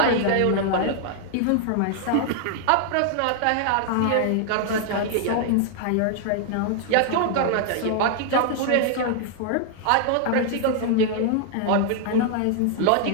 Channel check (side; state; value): both; different; correlation 0.00